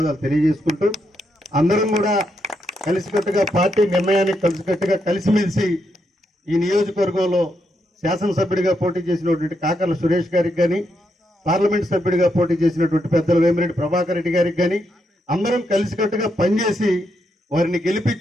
తెలియజేసుకుంటూ, అందరం కూడా కలిసికట్టుగా పార్టీ నిర్ణయానికి కలిసికట్టుగా కలిసిమెలిసి ఈ నియోజకవర్గంలో శాసనసభ్యుడిగా పోటీ చేసినటువంటి కాకర్ల సురేష్ గారికి కానీ, పార్లమెంట్ సభ్యుడిగా పోటీ చేసినటువంటి పెద్దల వేమిరెడ్డి ప్రభాకర్ రెడ్డి గారికి కానీ అందరం కలిసికట్టుగా పనిచేసి వారిని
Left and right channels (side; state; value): both; normal; correlation 0.81